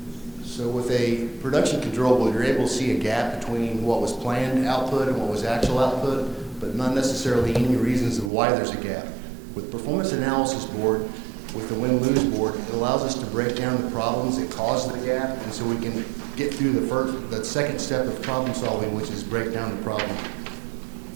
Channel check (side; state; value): left; drops out; at 8.3 s